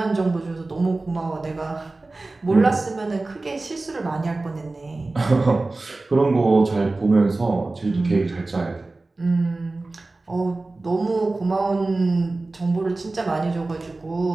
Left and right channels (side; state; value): left; quieter; 3.2 dB